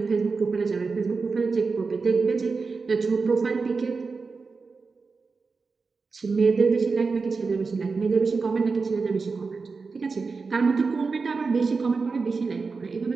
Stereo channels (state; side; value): quieter; left; 4.5 dB